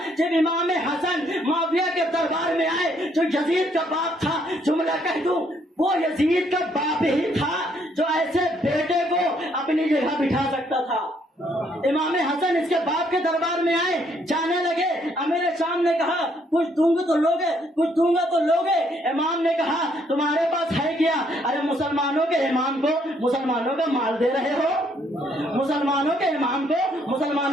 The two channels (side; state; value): both; normal; correlation 0.69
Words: جب امام حسن معاویہ کے دربار میں آئے جو یزید کا باپ تھا۔ جملہ کہہ دوں، وہ یزید کا باپ ہی تھا جو ایسے بیٹے کو اپنی جگہ بٹھا سکتا تھا۔ امام حسن اس کے باپ کے دربار میں آئے، جانے لگے، امیر شام نے کہا کچھ دوں گے تو لوگے، کچھ دوں گا تو لوگے۔ امام نے کہا تمہارے پاس ہے کیا؟ ارے مسلمانوں کے امام کو مسلمانوں کا مال دے رہے ہو، مسلمانوں کے امام کو